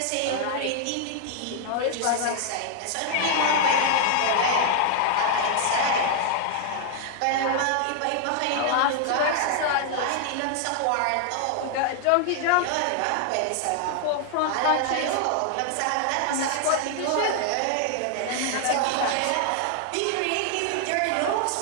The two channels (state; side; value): different; both; correlation 0.00